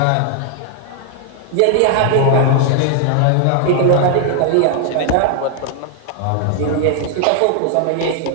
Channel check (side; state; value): both; different; correlation 0.00